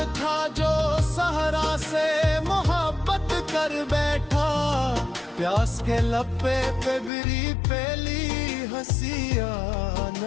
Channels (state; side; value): drops out; right; at 7.1 s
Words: था जो सहरा से मोहब्बत कर बैठा। प्यास के लपे पे बिरी पेली हंसिया